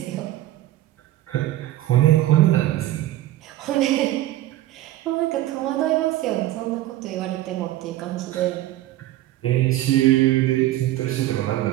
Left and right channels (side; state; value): left; quieter; 14.8 dB